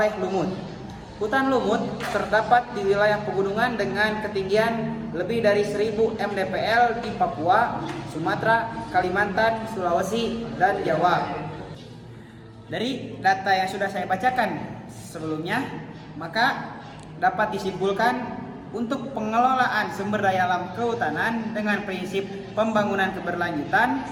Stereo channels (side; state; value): both; identical; correlation 1.00